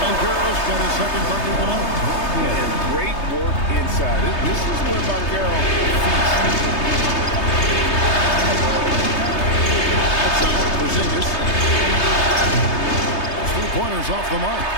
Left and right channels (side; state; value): right; late; 3.3 ms